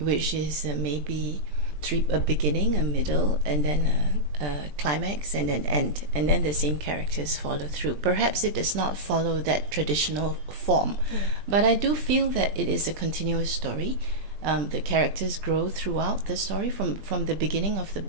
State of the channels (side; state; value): left; late; 20 ms